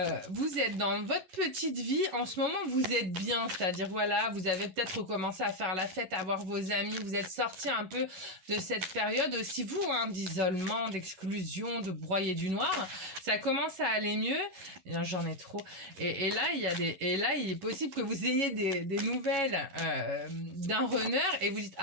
vous êtes dans votre petite vie, en ce moment vous êtes bien, c'est-à-dire voilà, vous avez peut-être recommencé à faire la fête, à voir vos amis, vous êtes sorti un peu de cette période aussi vous, hein, d'isolement, d'exclusion, de broyer du noir, ça commence à aller mieux, j'en ai trop, et là il est possible que vous ayez des nouvelles d'un runner et vous dites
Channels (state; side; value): late; left; 11 ms